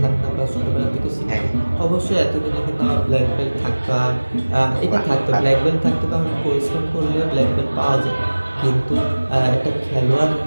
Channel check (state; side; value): inverted; both; correlation -1.00